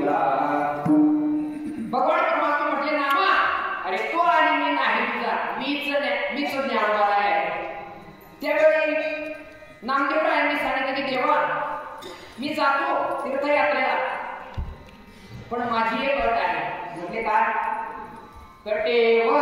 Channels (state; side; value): identical; both; correlation 1.00